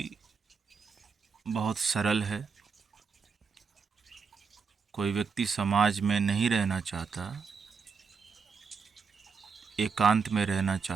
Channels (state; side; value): quieter; left; 5.5 dB